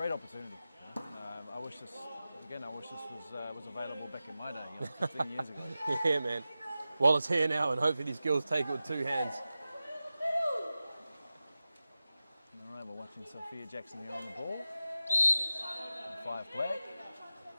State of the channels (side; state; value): both; inverted; correlation -0.94